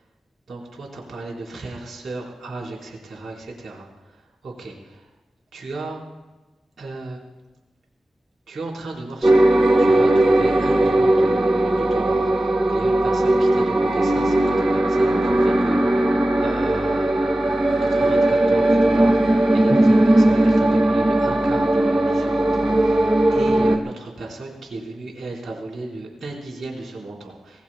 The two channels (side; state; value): both; normal; correlation 0.96